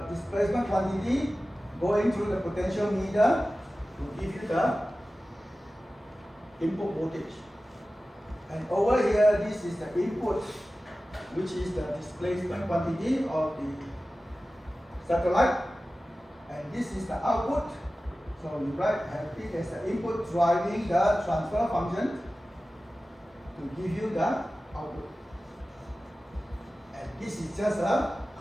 displacement quantity going through the potentiometer to give you the input voltage. And over here, this is the input, which is the displacement quantity of the satellite. And this is the output. So you have it as the input driving the transfer function to give you the output. And this is just a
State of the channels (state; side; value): normal; both; correlation 0.95